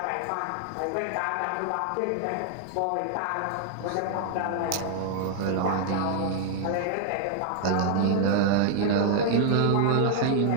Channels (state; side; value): different; both; correlation 0.00